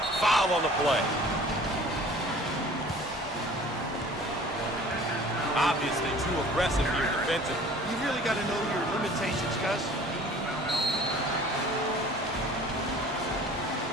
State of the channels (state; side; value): normal; both; correlation 0.48